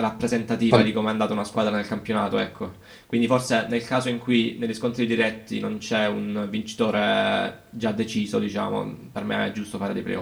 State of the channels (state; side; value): identical; both; correlation 1.00